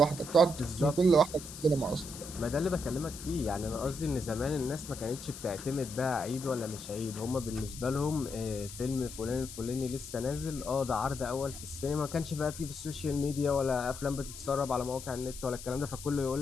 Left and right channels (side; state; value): left; noise; hiss, 12 dB below the sound